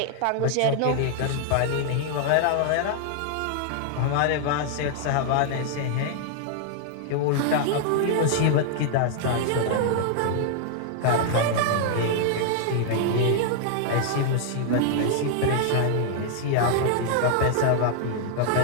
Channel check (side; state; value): both; different; correlation 0.00